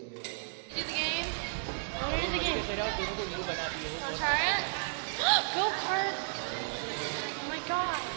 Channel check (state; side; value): silent; left; digital silence